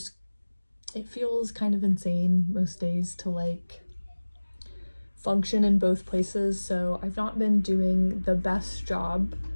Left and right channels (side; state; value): both; inverted; correlation -1.00